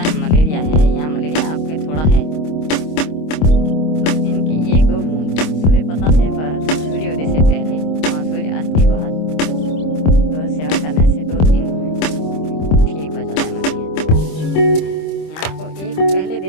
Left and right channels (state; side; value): late; right; 26 ms